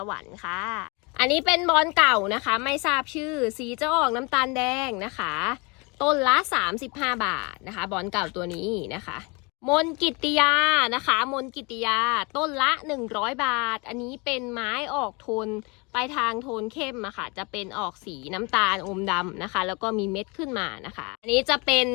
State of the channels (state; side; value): quieter; right; 28.7 dB